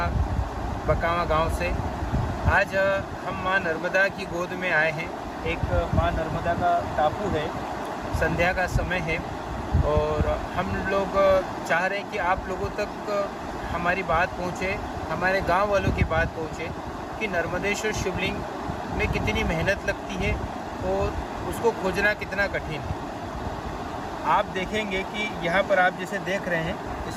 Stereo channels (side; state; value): both; identical; correlation 1.00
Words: बकावा गांव से। आज हम माँ नर्मदा की गोद में आए हैं। एक माँ नर्मदा का टापू है, संध्या का समय है और हम लोग चाह रहे हैं कि आप लोगों तक हमारी बात पहुँचे, हमारे गांव वालों की बात पहुँचे कि नर्मदेश्वर शिवलिंग में कितनी मेहनत लगती है और उसको खोजना कितना कठिन है। आप देखेंगे कि यहाँ पर आप जैसे देख रहे हैं,